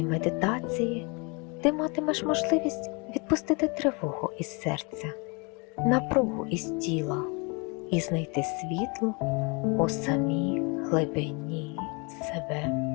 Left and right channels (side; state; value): right; quieter; 31.0 dB